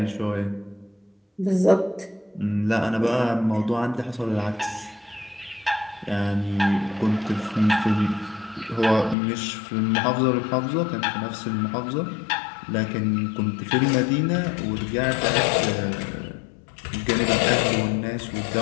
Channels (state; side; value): drops out; right; at 9.2 s